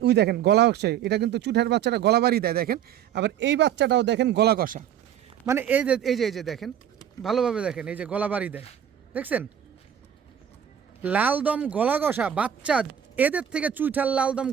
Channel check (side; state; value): left; quieter; 9.5 dB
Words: ওই দেখেন গলা হচ্ছে, এটা কিন্তু চুইঠাল বাচ্চাটা গলা বাড়ি দেয় দেখেন। আবার এই বাচ্চাটাও দেখেন গলা কষা, মানে এই যে দেখেন ভালোভাবে দেখেন, এই যে গলা বাড়ি দেয় দেখছেন, লালদম গলা কষা বাচ্চা। এদের থেকে চুইঠাল লালদম